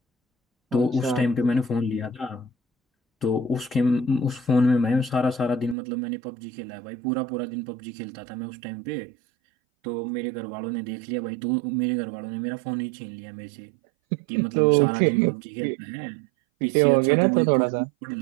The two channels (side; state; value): left; drops out; at 5.8 s